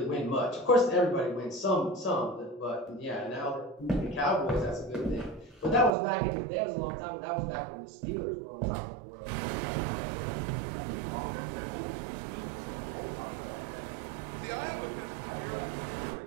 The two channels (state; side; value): drops out; left; at 6.0 s